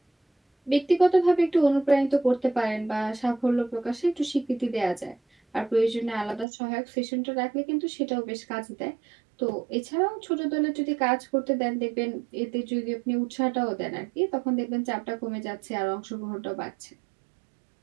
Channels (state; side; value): drops out; left; at 6.5 s